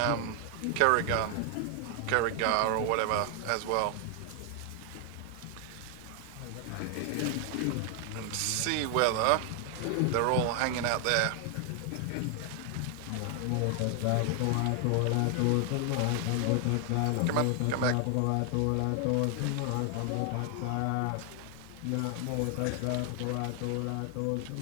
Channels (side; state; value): both; different; correlation 0.00